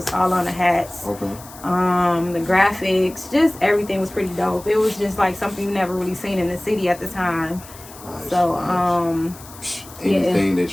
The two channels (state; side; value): noise; left; hiss, 18 dB below the sound